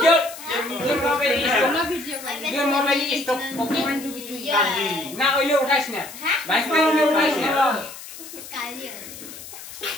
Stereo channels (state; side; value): noise; left; hiss, 14 dB below the sound